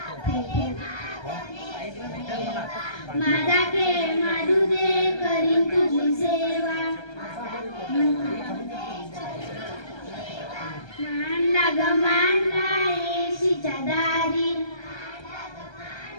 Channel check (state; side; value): late; right; 1.3 ms